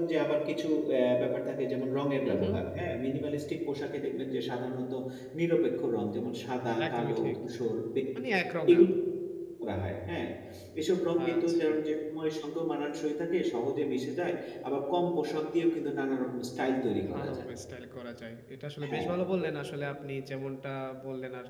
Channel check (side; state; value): both; identical; correlation 1.00